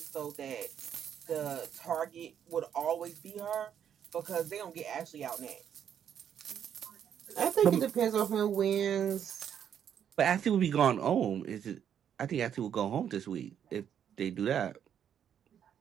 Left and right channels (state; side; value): quieter; left; 8.9 dB